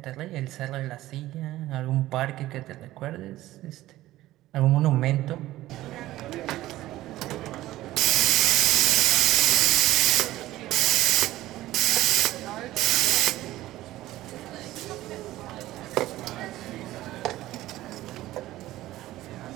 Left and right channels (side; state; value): left; quieter; 15.7 dB